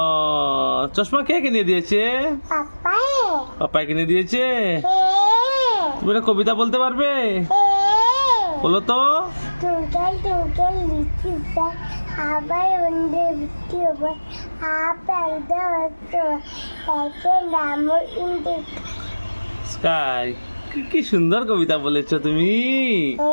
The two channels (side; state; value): both; inverted; correlation -1.00